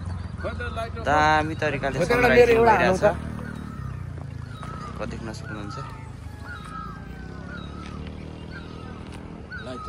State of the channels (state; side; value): identical; both; correlation 1.00